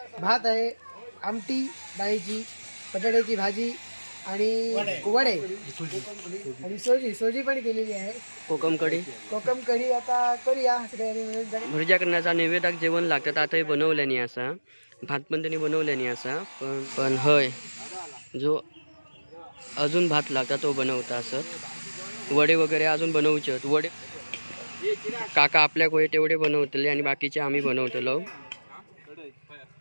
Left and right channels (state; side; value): inverted; both; correlation -1.00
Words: भात आहे, आमटी डाळीची, बटाट्याची भाजी आणि वडे आणि सोजी पण केलेली आहे. कोकम कढी आता करूया. भुर्जा करण्याचा नैवेद्याक जेवण लागतात. आता हे बनवल्यानी असा, भात पण त्यांनी बनवल्यानी असा, पण हय जो अजून भात लागता तो बनवता असत. वडे वगैरे अजून बनवचे. वडे काका आपल्या कोय तेवढे बनवतले आणि बाकीचे आम्ही बनवतलो.